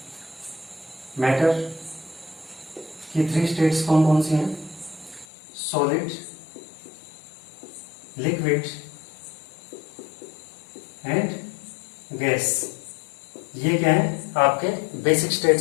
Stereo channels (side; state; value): right; drops out; at 5.2 s